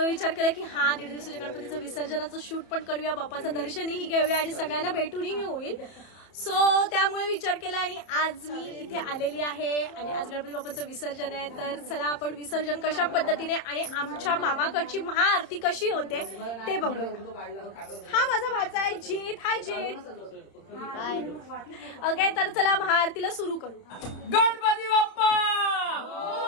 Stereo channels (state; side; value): late; right; 30 ms